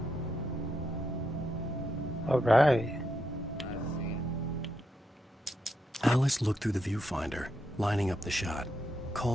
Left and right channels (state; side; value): normal; both; correlation 0.82